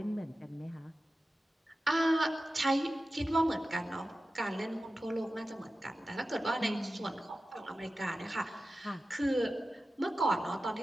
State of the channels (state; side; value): normal; both; correlation 0.94